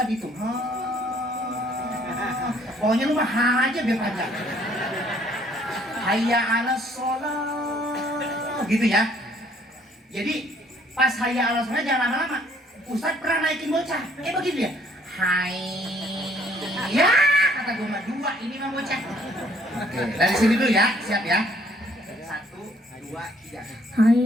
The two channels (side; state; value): both; normal; correlation 0.62